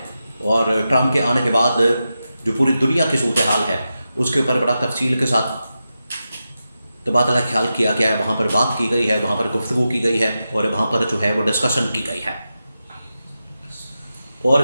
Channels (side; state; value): both; inverted; correlation -0.90